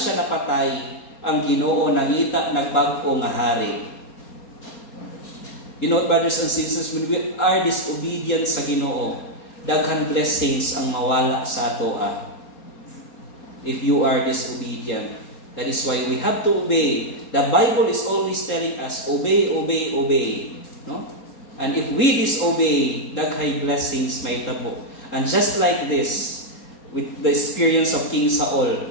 napatay ang Ginoo nangita nagbago nga hari. You know, brothers and sisters, when we are disobedient sa Ginoo, daghan blessings ang mawala sa ato. If you are disobedient, that is why we have to obey. The Bible is always telling us, obey, obey, obey. No? And if we disobey, daghay blessings may tabo. And just like this, with the experience of King Saul,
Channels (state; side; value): late; right; 4.2 ms